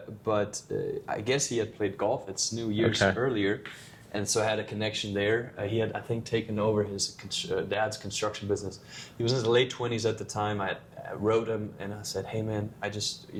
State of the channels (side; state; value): both; identical; correlation 1.00